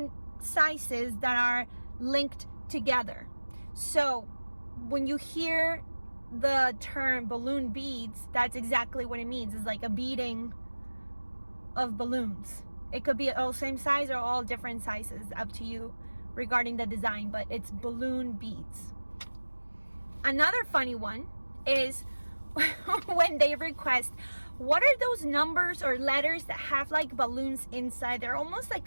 sizes that are linked together. So when you hear the term balloon beads, that's exactly what it means. It's like a beading of balloons. It could be all same size or all different sizes, up to you regarding the design, but it's balloon beads. Another funny one is when they request, what are those numbers or letters that have like balloons inside? They're almost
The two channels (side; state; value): both; inverted; correlation -1.00